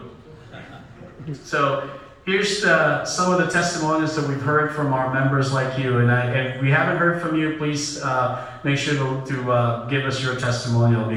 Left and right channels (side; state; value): both; identical; correlation 1.00